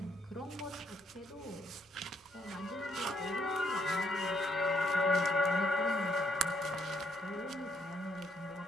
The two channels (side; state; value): both; normal; correlation 0.73